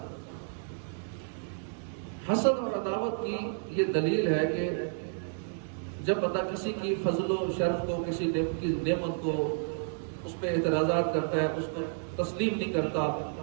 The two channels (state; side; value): silent; left; digital silence